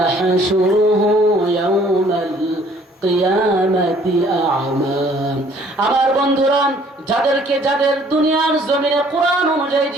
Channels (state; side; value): normal; both; correlation 0.58